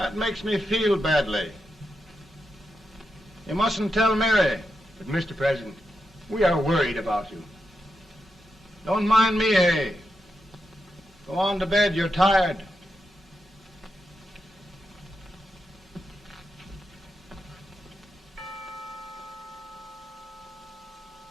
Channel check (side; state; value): both; normal; correlation 0.86